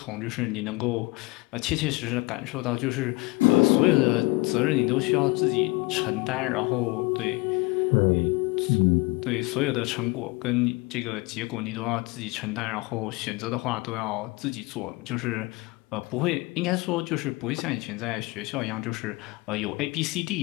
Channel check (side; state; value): right; quieter; 23.3 dB